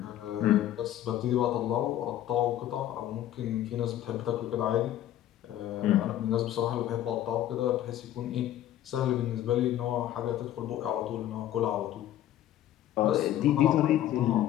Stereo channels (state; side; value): quieter; right; 12.4 dB